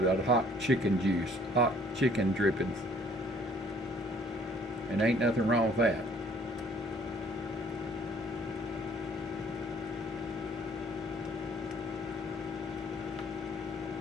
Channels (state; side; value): normal; both; correlation 0.57